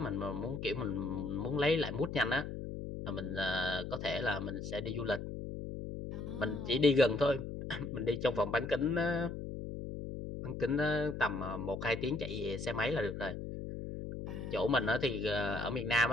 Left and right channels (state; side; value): noise; left; hum, 7 dB below the sound